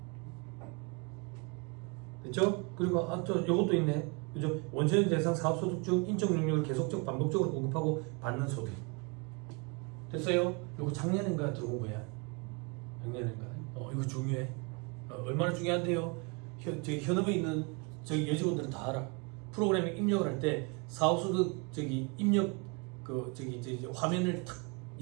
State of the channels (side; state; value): left; quieter; 31.7 dB